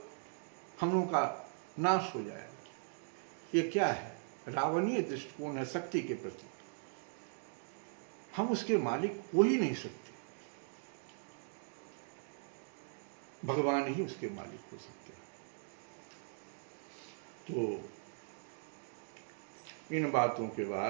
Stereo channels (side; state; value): left; silent; digital silence